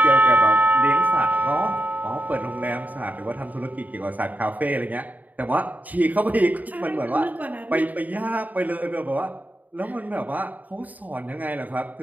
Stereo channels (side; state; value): left; late; 0.077 ms